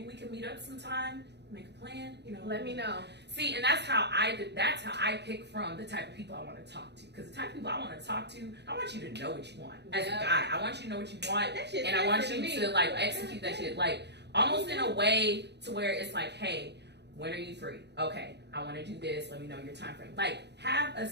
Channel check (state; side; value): late; left; 0.50 ms